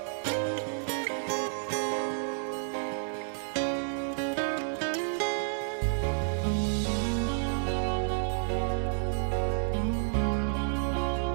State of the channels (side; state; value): left; silent; 58 dB below the other